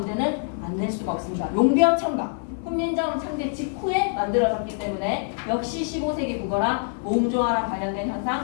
안 낼 수가 없습니다. 용비어 청각 훈민정음 창제 직후에 만들어졌기 때문에 역시 15세기 국어라 몸조화랑 관련된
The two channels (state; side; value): silent; right; 56 dB below the other